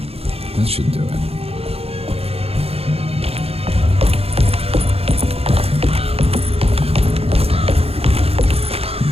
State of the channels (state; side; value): late; left; 0.29 ms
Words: that should do it.